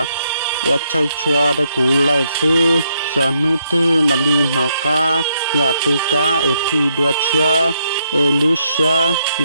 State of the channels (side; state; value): both; inverted; correlation -0.76